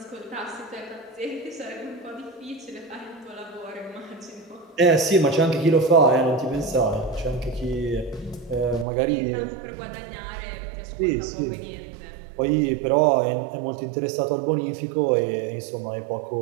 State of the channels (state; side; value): drops out; left; at 8.8 s